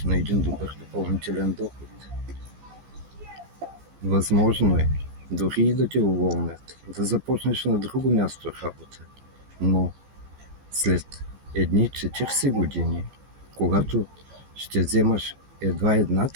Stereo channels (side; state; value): left; late; 14 ms